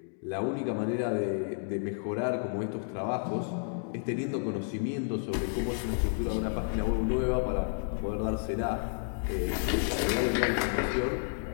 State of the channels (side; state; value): right; silent; digital silence